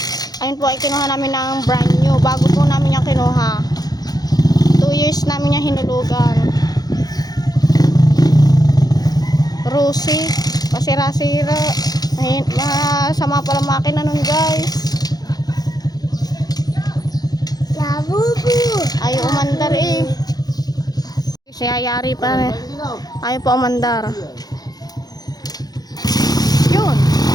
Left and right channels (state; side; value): late; right; 0.19 ms